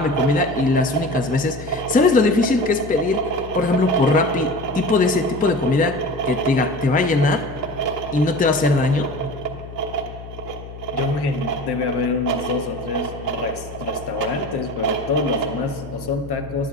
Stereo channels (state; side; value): noise; left; hum, 14 dB below the sound